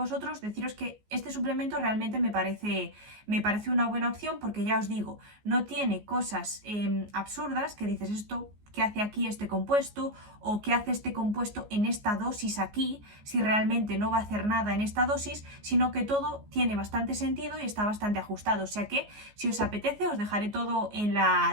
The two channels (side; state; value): left; late; 14 ms